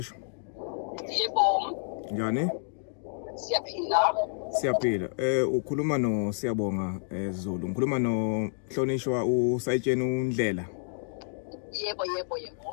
Yebo. Njani? Siyaphila. Siyaphila. Ukhuluma no Siyabonga Zulu. Ngikhuluma no Mhlonishwa uSayitsheni uNdlela. Yebo.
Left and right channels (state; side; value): silent; right; digital silence